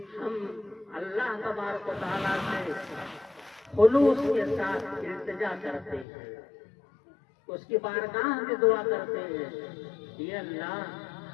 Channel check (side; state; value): right; drops out; at 6.1 s